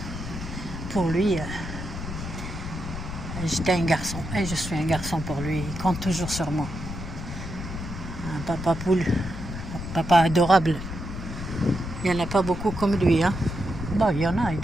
Pour lui, j'étais un garçon. Et je suis un garçon pour lui. Il compte toujours sur moi. Un papa poule. Un papa adorable. Il n'y en a pas beaucoup comme lui. Hein. Bon, il y en a. Il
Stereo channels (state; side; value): noise; left; rumble, 8 dB below the sound